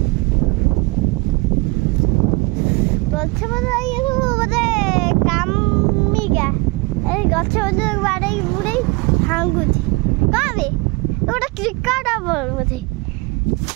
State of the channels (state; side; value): quieter; left; 25.5 dB